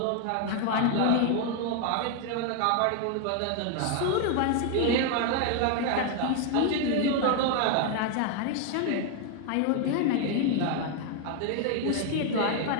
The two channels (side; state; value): both; different; correlation 0.01